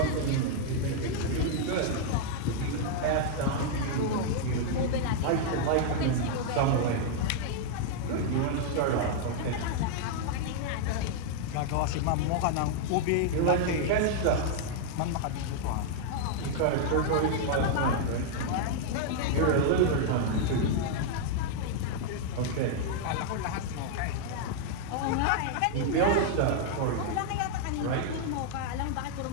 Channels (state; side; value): different; both; correlation -0.01